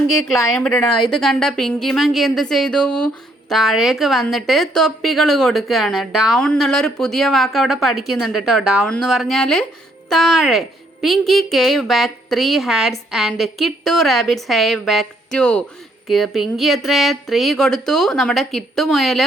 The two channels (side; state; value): both; normal; correlation 0.70